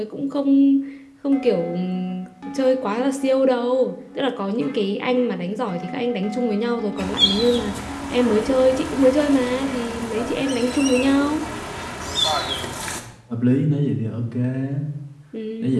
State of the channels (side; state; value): both; identical; correlation 1.00